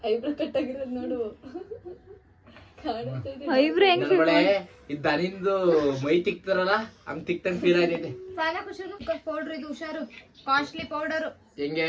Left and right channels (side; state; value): both; identical; correlation 1.00